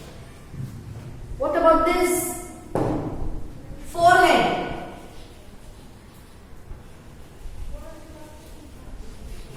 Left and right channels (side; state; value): both; identical; correlation 1.00